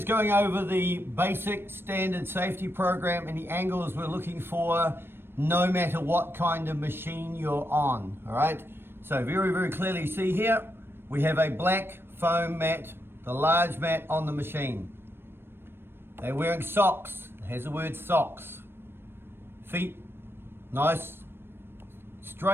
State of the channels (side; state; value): left; late; 0.11 ms